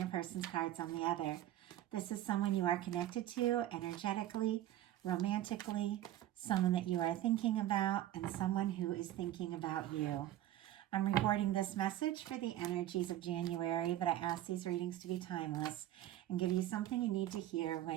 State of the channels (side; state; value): left; quieter; 13.3 dB